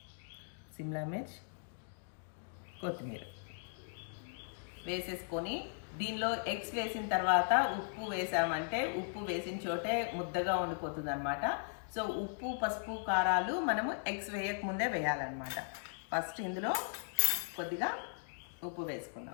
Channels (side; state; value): right; silent; digital silence